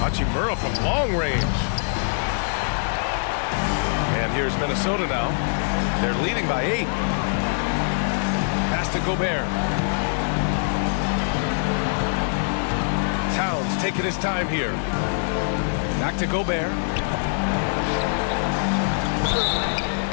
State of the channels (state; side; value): silent; right; 63 dB below the other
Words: Hachimura from long range. And here's Minnesota now. They're leading by 8. Pass to Gobert. Towns taking his time here. Back to Gobert.